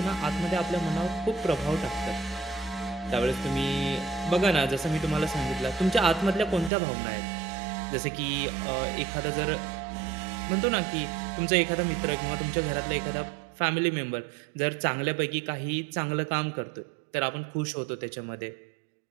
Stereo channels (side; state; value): left; drops out; at 6.7 s